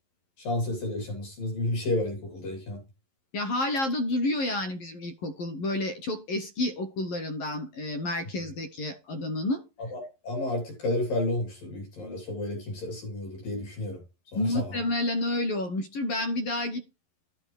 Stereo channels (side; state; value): right; late; 11 ms